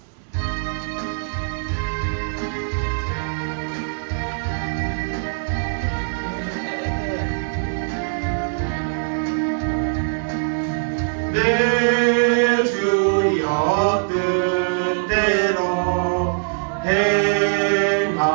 내 주여 뜻대로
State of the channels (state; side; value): silent; left; digital silence